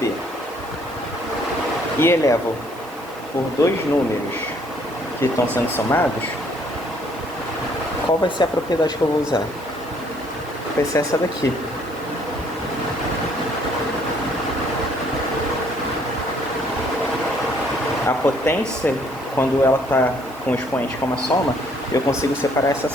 e elevo por 2 números que estão sendo somados, qual vai ser a propriedade que eu vou usar? Vai ser essa daqui. A potência, quando ela está com o expoente como a soma, eu consigo separar essa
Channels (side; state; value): right; noise; hiss, 22 dB below the sound